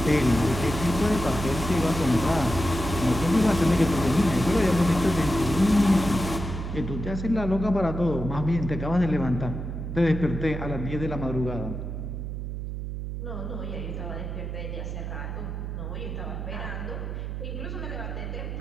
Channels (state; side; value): noise; right; hum, 5 dB below the sound